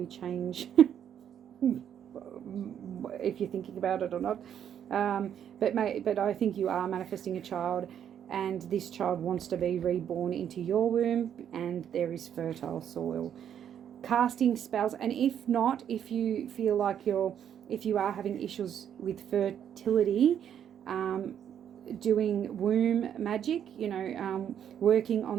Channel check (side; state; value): left; quieter; 9.2 dB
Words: change if you're thinking about it or not. But I think you are manifesting a child, and this child wants to be reborn into your womb, and there is fertile soil. Casting spells, and if not, if you feel like if you are having issues with fertility, doing womb magic, working